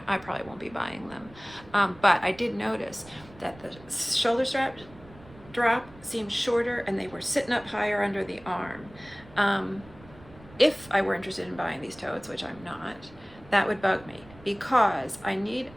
I probably won't be buying them. But I did notice that the shoulder strap drop seemed shorter, and they were sitting up higher under the arm. If I were interested in buying these totes, which I'm not, that would bug me, because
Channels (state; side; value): noise; right; rumble, 21 dB below the sound